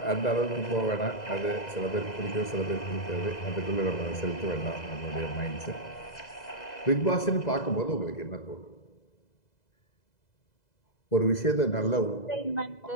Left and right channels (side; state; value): right; late; 2.0 ms